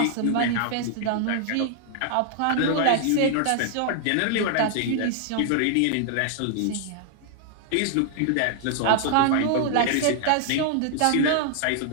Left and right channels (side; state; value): both; different; correlation 0.00